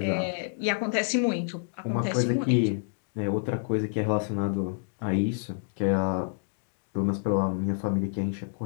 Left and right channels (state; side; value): silent; right; digital silence